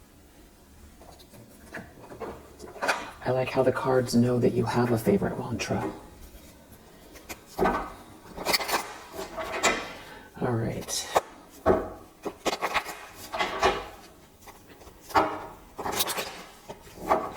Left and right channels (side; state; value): both; identical; correlation 1.00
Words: I like how the cards know that you have a favorite mantra. All right.